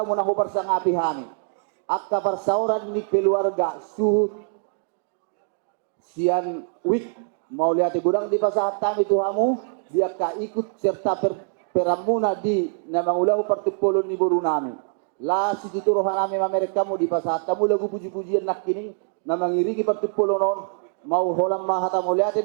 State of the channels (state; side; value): silent; left; 63 dB below the other